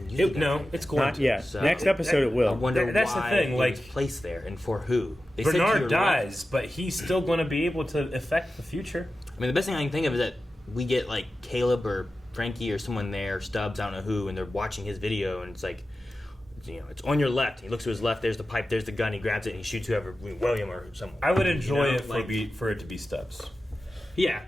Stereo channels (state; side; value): normal; both; correlation 0.93